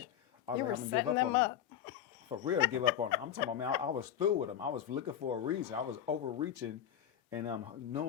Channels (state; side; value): quieter; right; 10.2 dB